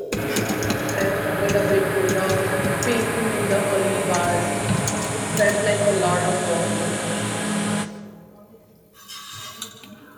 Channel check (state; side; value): identical; both; correlation 1.00